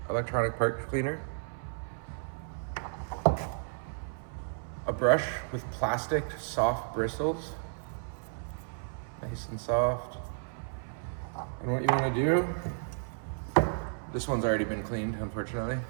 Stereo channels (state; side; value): silent; left; 56 dB below the other